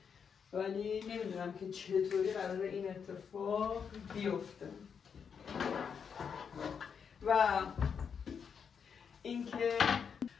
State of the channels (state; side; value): quieter; right; 6.7 dB